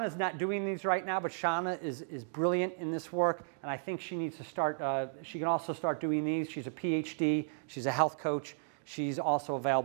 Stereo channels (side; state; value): left; silent; digital silence